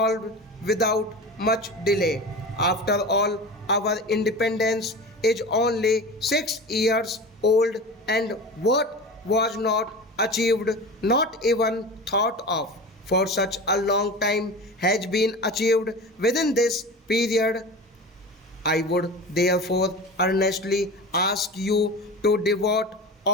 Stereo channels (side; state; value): both; normal; correlation 0.32